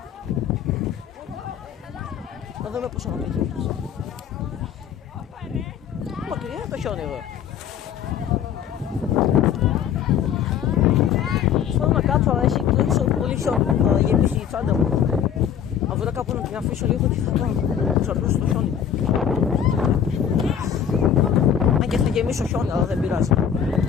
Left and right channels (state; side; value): quieter; right; 8.6 dB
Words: Να δούμε πόσο να πετύχει. Μακριά το χιόνι εδώ. Θέλω να κάτσω, αλλά έχει τόσο πολύ χιόνι. Θα γεμίσει η τσάντα μου. Αν βρω κάπου να την αφήσω λίγο και θα πάω. Ξαπλώσω το χιόνι. Αν και θα γεμίσω χιόνι, αλλά δεν πειράζει.